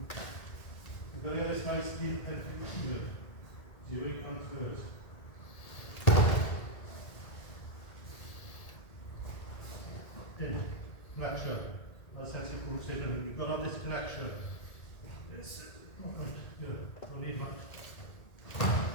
You've got to get this nice deep head here. So your weight transfers. In, flexion. That's sensitive considering you've got to have this connection. Yes. Good. Don't need much.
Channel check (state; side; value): late; right; 1.8 ms